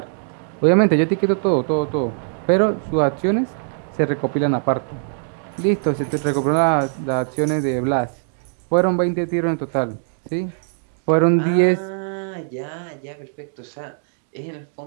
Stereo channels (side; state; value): left; silent; digital silence